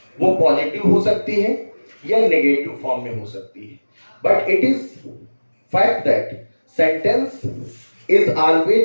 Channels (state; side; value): inverted; both; correlation -1.00